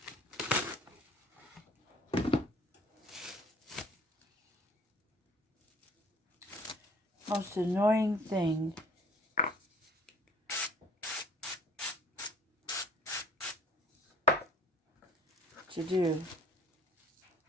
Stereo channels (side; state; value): both; normal; correlation 0.54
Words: Most annoying thing to do.